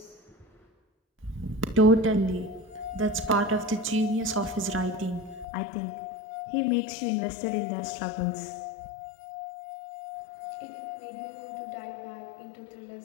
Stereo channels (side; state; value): right; drops out; at 5.5 s